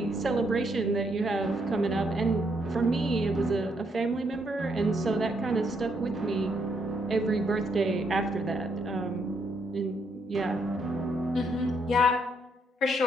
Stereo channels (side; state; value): both; normal; correlation 0.75